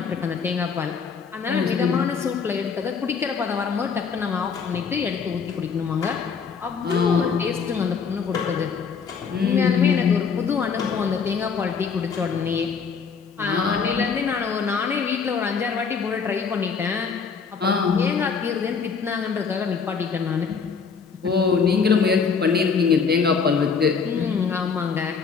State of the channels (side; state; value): right; quieter; 5.8 dB